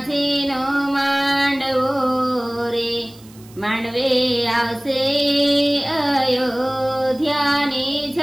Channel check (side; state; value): right; noise; hiss, 25 dB below the sound